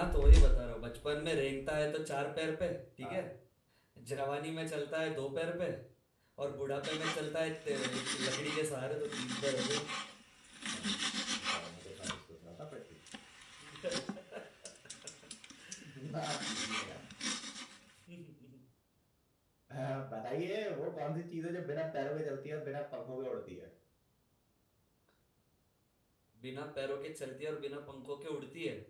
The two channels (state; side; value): identical; both; correlation 1.00